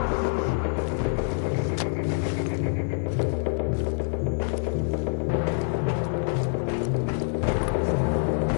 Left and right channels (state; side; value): silent; right; 61 dB below the other